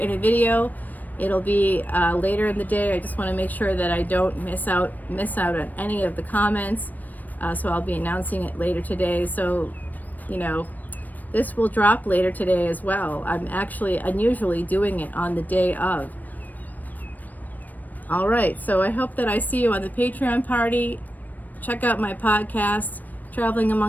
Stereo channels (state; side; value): late; right; 0.084 ms